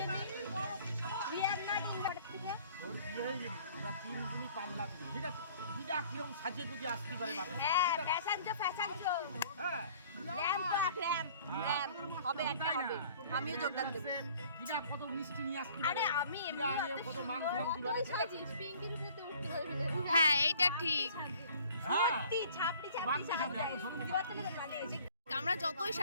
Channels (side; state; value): both; inverted; correlation -0.53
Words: We are not invited থেকে। ওর বিয়ে হয়ে গেলি, ওরা 3 দিনই পাল্লা দিবি, ঠিক আছে? দিদা কিরকম সাজিয়ে গুজিয়ে আসতে পারে না? হ্যাঁ, ফ্যাশন শো। হ্যাঁ, ল্যাম্প হবে একটা হবে। আমিও যোগদান দেব। দিদা কত মিষ্টি নিয়ে আসতে পারে। আরে আমি এমনি কত মাংস দিবে। সাজিস পিঙ্কির উপরে উঠতে পারবি না। হ্যাঁ, এইটা ঠিক। হ্যাঁ, ছাপড়ি আমরা যতই